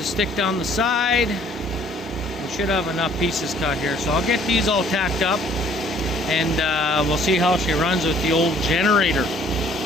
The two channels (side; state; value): both; normal; correlation 0.58